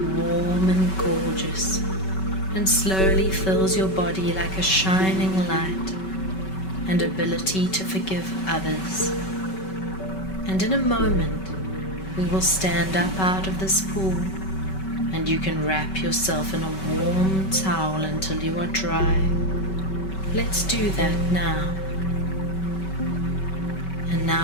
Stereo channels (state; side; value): late; right; 5.3 ms